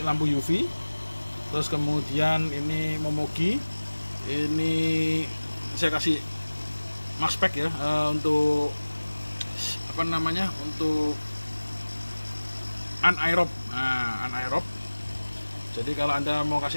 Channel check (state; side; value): inverted; both; correlation -1.00